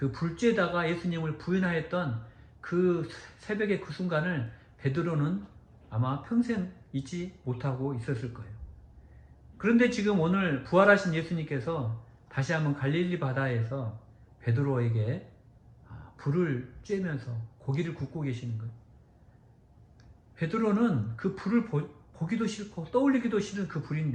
불 쬐다가 예수님을 부인하였던 그 새벽의 그 순간을 베드로는 아마 평생 잊지 못하고 있었을 거예요. 그런데 지금 오늘 부활하신 예수님께서 다시 한번 갈릴리 바다에서 베드로에게 불을 쬐면서 고기를 굽고 계시는 거예요. 베드로는 그 불을 보기도 싫고 떠올리기도 싫은 그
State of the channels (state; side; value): identical; both; correlation 1.00